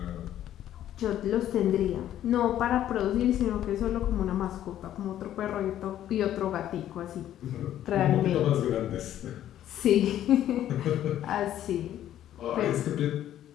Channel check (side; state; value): right; quieter; 11.8 dB